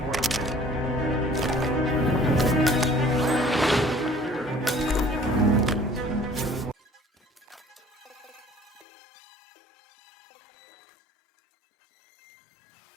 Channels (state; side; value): drops out; right; at 8.8 s